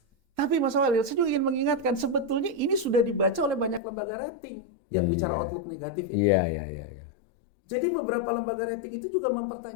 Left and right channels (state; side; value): drops out; right; at 3.8 s